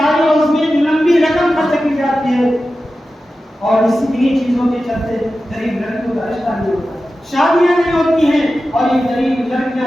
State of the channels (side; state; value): both; normal; correlation 0.93